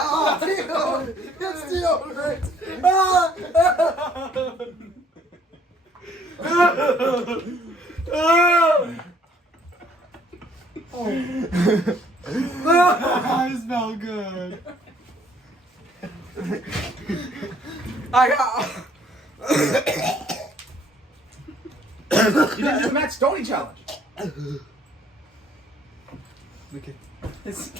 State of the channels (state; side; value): normal; both; correlation 0.61